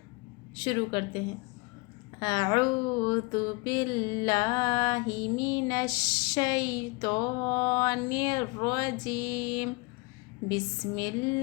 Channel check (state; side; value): quieter; right; 28.1 dB